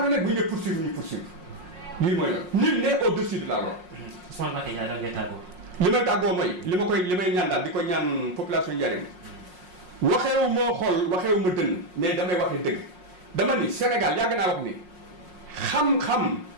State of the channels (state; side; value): late; left; 5.5 ms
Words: bu ñu dee poursuivre ñu poursuivre lii mooy la nul n'est au-dessus de la loi. Ousmane Mbacké Ndiaye daal ngay tàggoo. li may tàggoo mooy li may ñaan daal di ko ñaan population Ndiarème waxeewu moo xool waxeewu ma dënn mais damay waxee dëgg dama ni Sénégal yàgg naa wax ni xam-xam